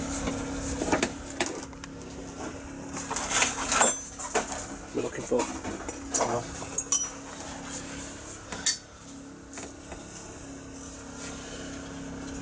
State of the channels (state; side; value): identical; both; correlation 1.00